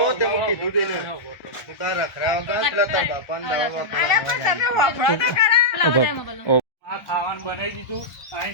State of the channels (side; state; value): right; late; 1.4 ms